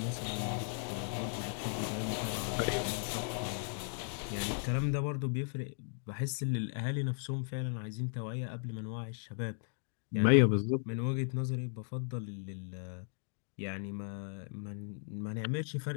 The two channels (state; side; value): silent; right; 53 dB below the other